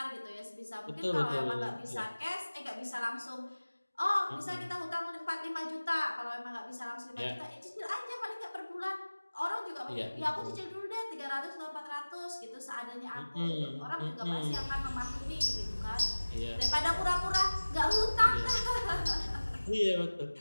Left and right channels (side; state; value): both; inverted; correlation -1.00